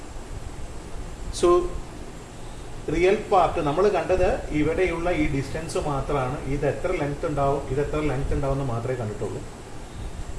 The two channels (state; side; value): identical; both; correlation 1.00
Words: So real part നമ്മൾ കണ്ടത് ഇവിടെയുള്ള ഈ ഡിസ്റ്റൻസ് മാത്രമാണ്. ഇത് എത്ര ലെങ്ത് ഉണ്ടാവും, ഇത് എത്ര ലെങ്ത് ഉണ്ടാവും എന്ന് മാത്രമേ കണ്ടിട്ടുള്ളൂ.